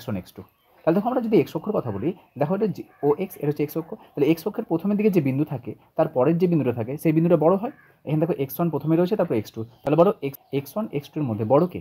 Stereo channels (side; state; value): both; identical; correlation 1.00